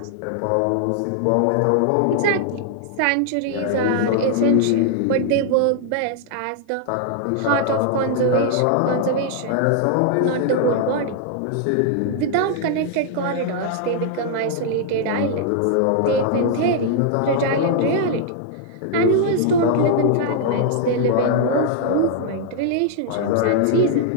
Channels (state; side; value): different; both; correlation -0.01